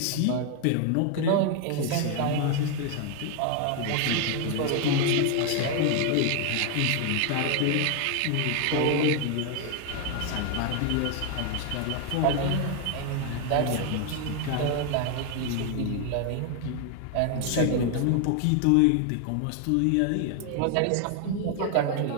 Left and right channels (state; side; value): different; both; correlation 0.01